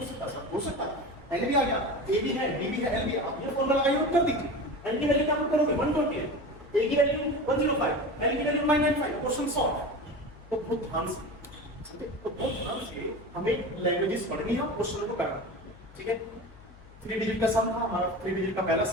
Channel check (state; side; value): noise; left; hum, 21 dB below the sound